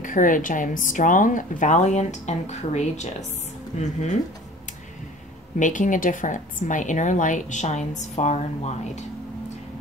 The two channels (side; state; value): both; normal; correlation 0.45